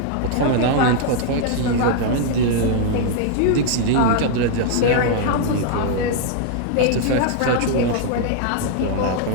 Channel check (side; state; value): both; different; correlation 0.00